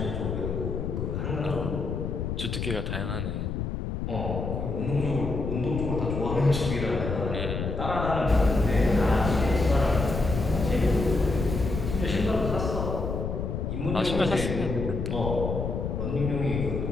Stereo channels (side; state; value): left; noise; rumble, 3 dB below the sound